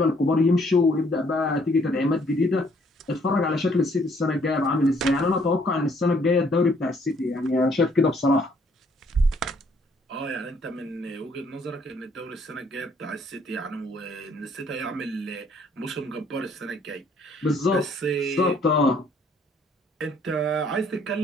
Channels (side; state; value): both; normal; correlation 0.64